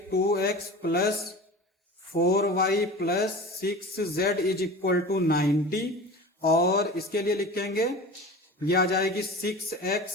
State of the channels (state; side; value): normal; both; correlation 0.35